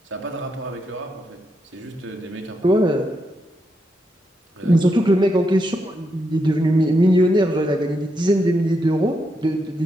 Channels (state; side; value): normal; both; correlation 0.82